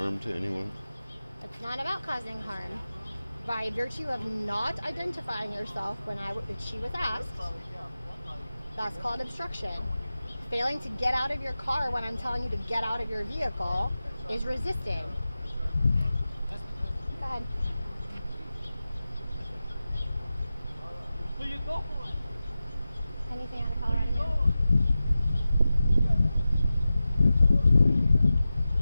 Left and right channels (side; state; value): both; inverted; correlation -0.94